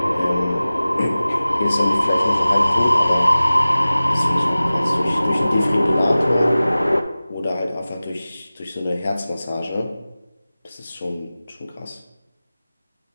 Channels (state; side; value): inverted; both; correlation -0.97